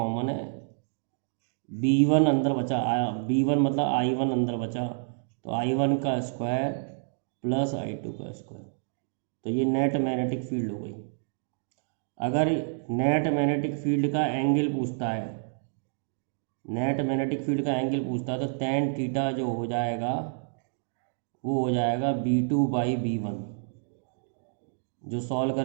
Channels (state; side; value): silent; left; digital silence